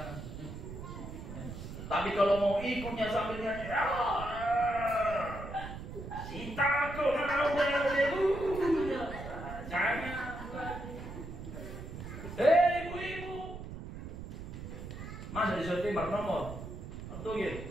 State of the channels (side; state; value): right; noise; rumble, 10 dB below the sound